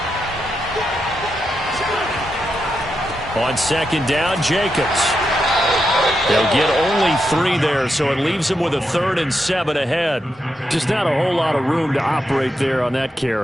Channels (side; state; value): both; normal; correlation 0.85